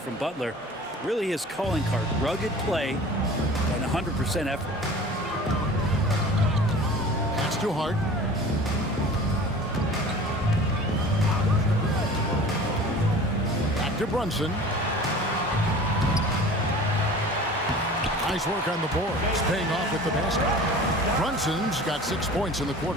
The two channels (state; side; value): normal; both; correlation 0.42